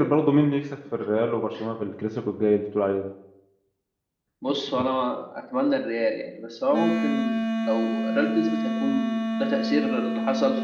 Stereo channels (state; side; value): identical; both; correlation 1.00